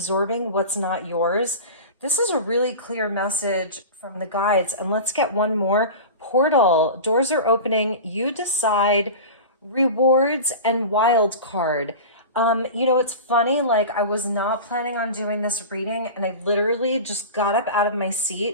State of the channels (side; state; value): both; inverted; correlation -0.31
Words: what's not yours. This is a really clear message from the guides. And let's get one more. Portal, doors are opening, you decide, rewards, and wild card. It's funny, like I was not planning on doing this reading and I literally just got up out of my